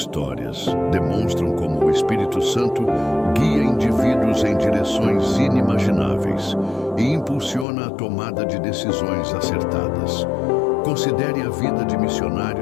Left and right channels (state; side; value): drops out; right; at 7.7 s